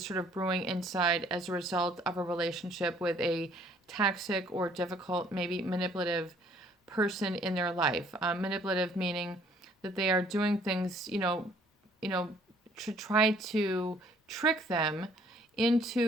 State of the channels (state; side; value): normal; both; correlation 0.60